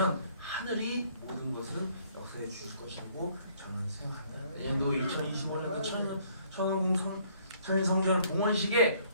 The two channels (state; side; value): inverted; both; correlation -0.63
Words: 하늘이 모든 것을 역사해 주실 것이라고 저는 생각합니다. 내년도 2025년도 천일성전 봉헌식에